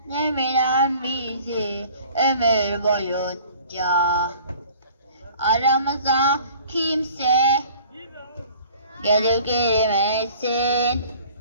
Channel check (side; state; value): both; inverted; correlation -0.50